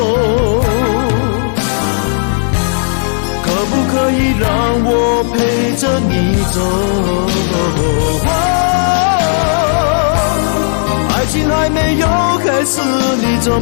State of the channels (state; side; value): silent; right; digital silence